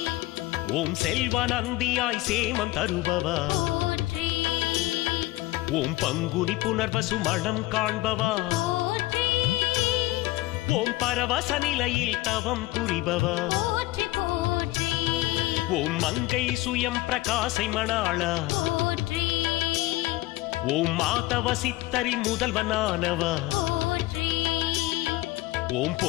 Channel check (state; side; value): quieter; right; 18.9 dB